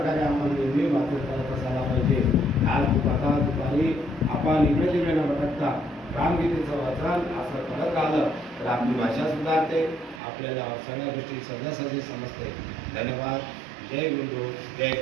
आपण नेहमी वाचन करत असायला पाहिजे। आज आता दुपारी आपण इकडे तिकडे न भटकता रामगीतेचं वाचन असं करत राहिलं तर आपली भाषा सुधारते, आपल्याला सगळ्या गोष्टी सहजासहजी समजते। धन्यवाद। जय गुरुदेव, जय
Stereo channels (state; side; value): drops out; left; at 10.2 s